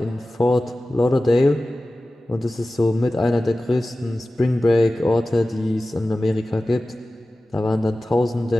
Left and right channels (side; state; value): both; normal; correlation 0.96